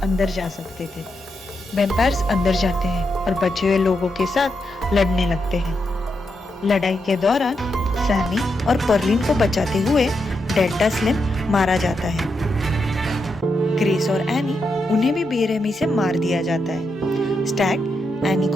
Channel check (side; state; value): both; normal; correlation 0.84